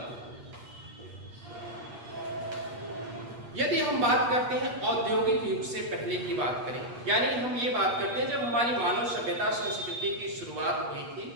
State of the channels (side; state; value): left; late; 8.3 ms